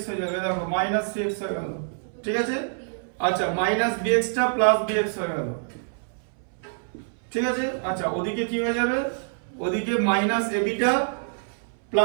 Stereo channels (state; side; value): silent; left; 60 dB below the other